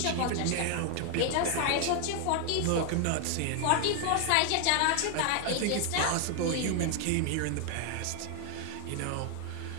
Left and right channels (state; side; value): different; both; correlation 0.00